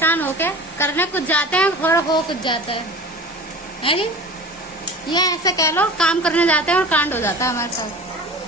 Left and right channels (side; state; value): both; normal; correlation 0.37